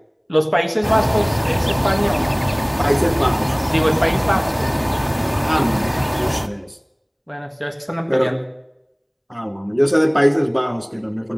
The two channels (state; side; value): identical; both; correlation 1.00